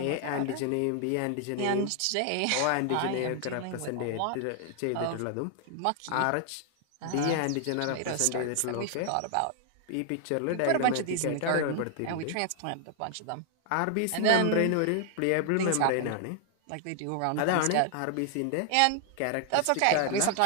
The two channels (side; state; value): both; different; correlation 0.00